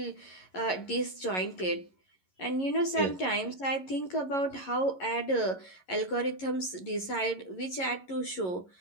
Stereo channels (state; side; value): late; right; 11 ms